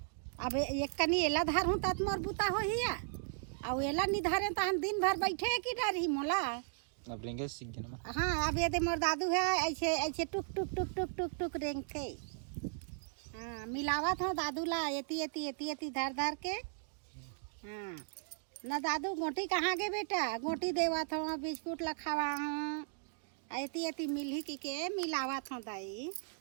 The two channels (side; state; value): left; silent; digital silence